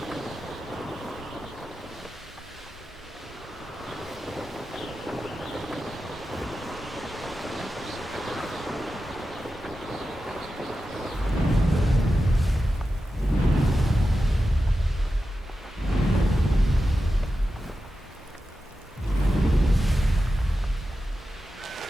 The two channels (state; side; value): normal; both; correlation 0.92